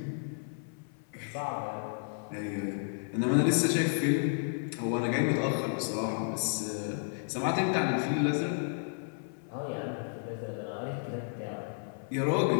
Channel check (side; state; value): right; silent; 56 dB below the other